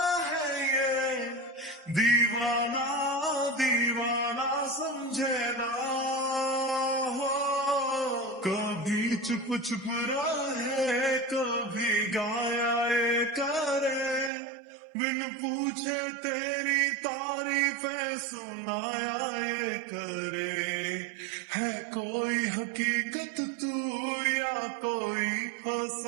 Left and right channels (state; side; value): drops out; left; at 14.3 s